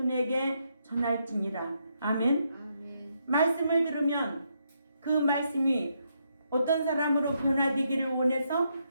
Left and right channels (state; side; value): inverted; both; correlation -0.78